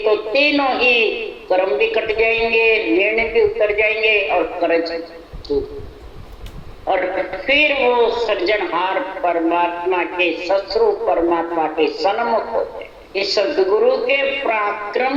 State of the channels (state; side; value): identical; both; correlation 1.00